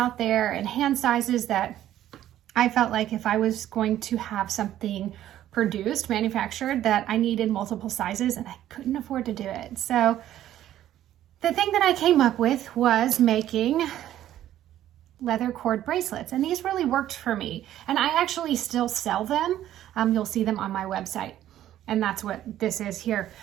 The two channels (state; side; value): quieter; left; 12.4 dB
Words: there and hand sizes that I felt like if I was going to have something produced, manufactured, that I needed multiple sizes and I couldn't afford to do it. So the thing that I came up with was making leather cord bracelets, and these really worked for me, and I actually still sell them. You'll see them on my website, and that's what this is here.